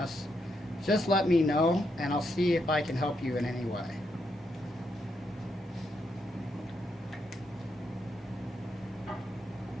just let me know and I'll see if I can help you in any way.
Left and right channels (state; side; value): normal; both; correlation 0.80